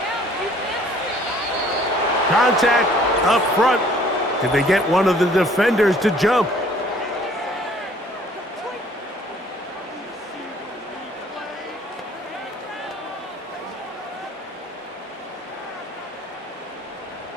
Contact up front. Did they get one of the defenders to jump?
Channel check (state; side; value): normal; both; correlation 0.56